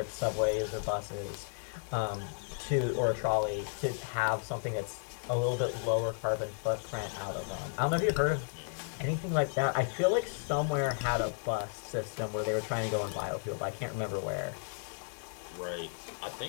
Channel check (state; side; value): silent; right; 55 dB below the other